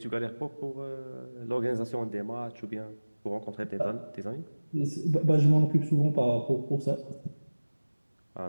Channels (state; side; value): inverted; both; correlation -1.00